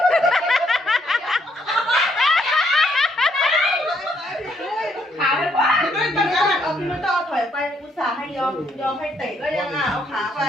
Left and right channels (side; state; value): both; normal; correlation 0.71